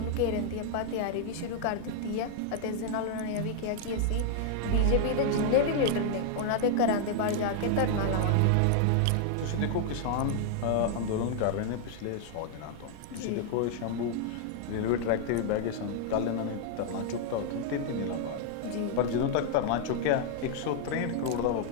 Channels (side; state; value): both; different; correlation 0.00